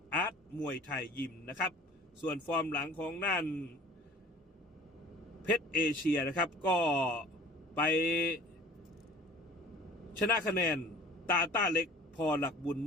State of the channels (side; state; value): both; normal; correlation 0.47